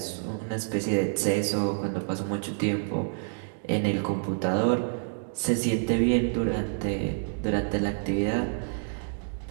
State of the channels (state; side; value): silent; left; digital silence